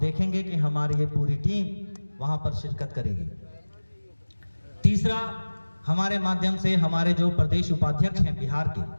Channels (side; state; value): both; inverted; correlation -1.00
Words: कि हमारी ये पूरी टीम वहां पर शिरकत करेगी। तीसरा, हमारे माध्यम से हमारे जो प्रदेश उपाध्यक्ष हैं बिहार के,